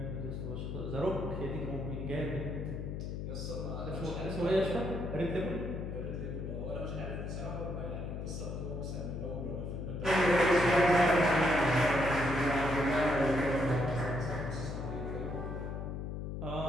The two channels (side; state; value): left; noise; hum, 5 dB below the sound